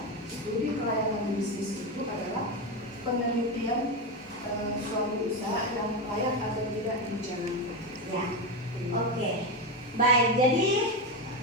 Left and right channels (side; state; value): both; normal; correlation 0.13